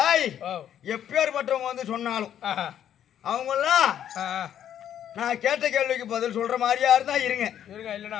எப்பேற்பட்டவங்க வந்து சொன்னாலும் அவங்க எல்லாம் நான் கேட்ட கேள்விக்கு பதில் சொல்ற மாதிரியா இருந்தா இருங்க,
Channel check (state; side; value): quieter; right; 10.1 dB